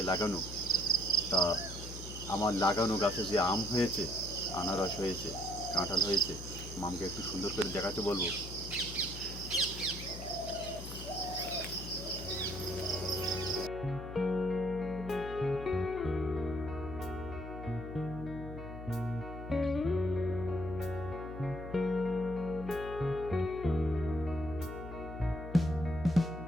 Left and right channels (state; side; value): noise; left; hum, 11 dB below the sound